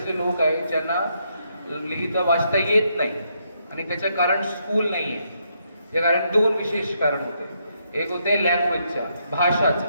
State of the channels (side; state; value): both; inverted; correlation -0.77